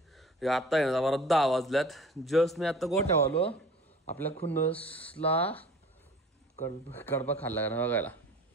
आता आहे ना बरं 10 वाजल्यात. जस्ट मी आता गोठ्यावर आलो. आपल्या खुन्नसला कडबा खाल्ला का बघायला.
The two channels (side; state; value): both; normal; correlation 0.44